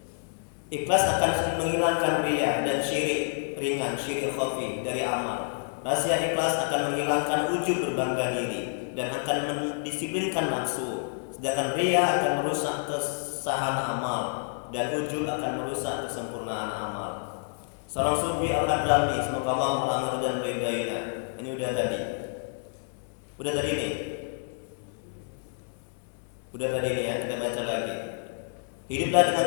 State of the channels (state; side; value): silent; right; digital silence